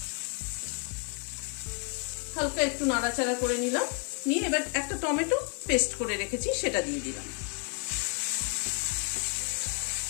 হালকা একটু নাড়াচাড়া করে নিলাম। নিয়ে এবার একটা টমেটো পেস্ট করে রেখেছি সেটা দিয়ে দিলাম।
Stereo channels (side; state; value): right; quieter; 38.1 dB